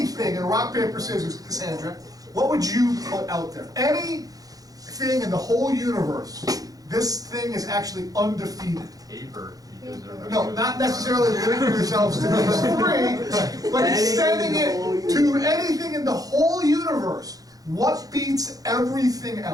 in rock, paper, scissors, Cassandra, what would you put out there? Anything in the whole universe, this thing is actually undefeated. Paper. Because they're No, not necessarily limiting yourselves to these three, but extending it to anything in the whole universe. What beats everything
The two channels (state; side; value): late; left; 0.18 ms